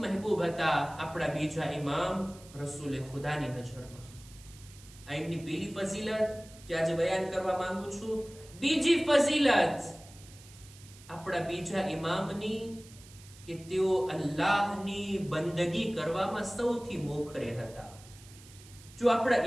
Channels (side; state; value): right; noise; hiss, 21 dB below the sound